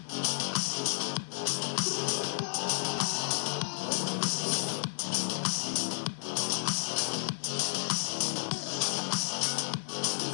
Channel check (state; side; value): silent; right; digital silence